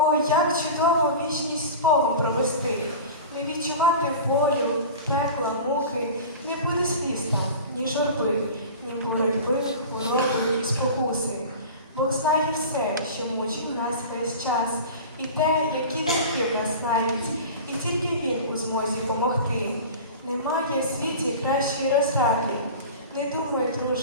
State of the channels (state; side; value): inverted; both; correlation -0.35